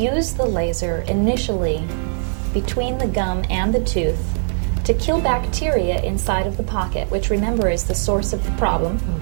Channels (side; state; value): left; silent; 65 dB below the other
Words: the laser initially between the gum and the tooth to kill bacteria inside of the pocket, which, remember, is the source of the problem.